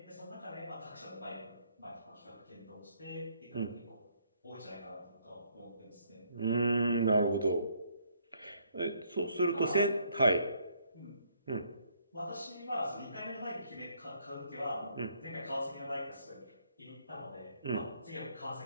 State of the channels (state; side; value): inverted; both; correlation -0.68